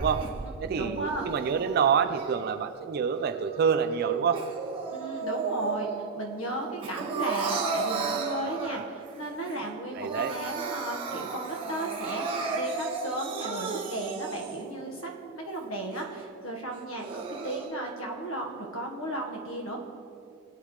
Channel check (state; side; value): quieter; left; 4.3 dB